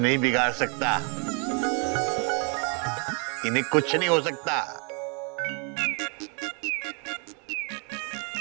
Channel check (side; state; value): left; quieter; 33.3 dB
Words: बिगाड़ सकता, इन्हें कुछ नहीं हो सकता।